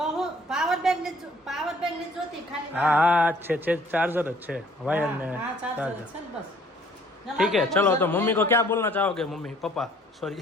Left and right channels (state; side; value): normal; both; correlation 0.58